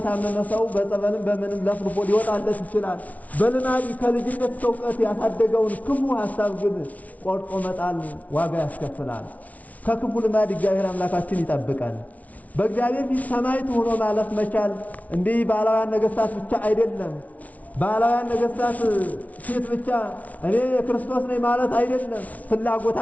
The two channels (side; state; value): right; late; 0.070 ms